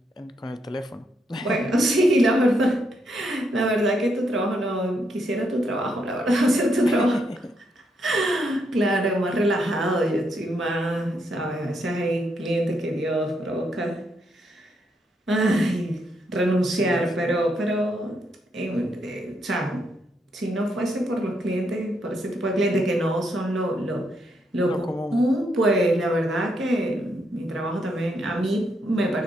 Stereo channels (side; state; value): both; normal; correlation 0.78